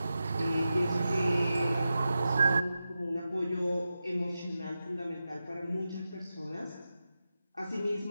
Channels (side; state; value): both; inverted; correlation -0.91